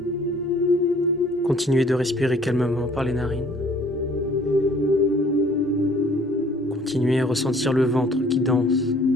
Continuez de respirer calmement par les narines. Continuez à ressentir le ventre qui danse,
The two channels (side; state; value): both; normal; correlation 0.56